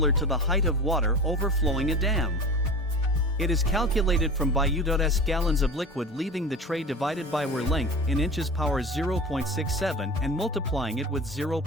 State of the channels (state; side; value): normal; both; correlation 0.33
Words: to the height of water overflowing a dam. It is calculated from BU.S gallons of liquid leaving the tray divided by weir length in inches power 0.67 and multiplying it with